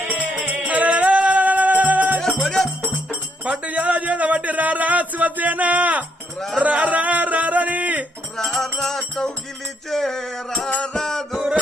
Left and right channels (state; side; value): normal; both; correlation 0.74